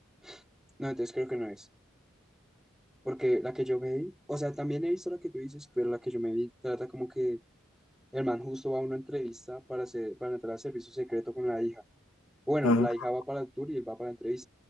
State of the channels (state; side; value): normal; both; correlation 0.90